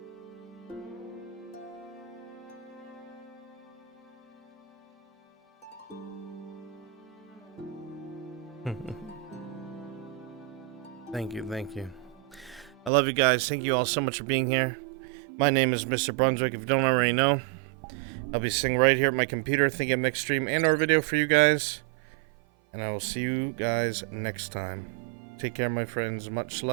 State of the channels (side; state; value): left; drops out; at 12.9 s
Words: Thank you, thank you. I love you guys. Thank you all so much for being here. My name is Mr. Brunswick, if you don't already know. I'll be sitting right here at my computer thinking of next stream and or video for you guys. And I will see you guys next time. Take care, my friends. Much